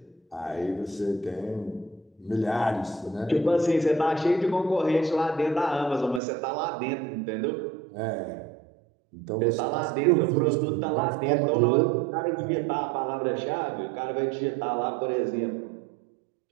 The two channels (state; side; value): drops out; left; at 6.2 s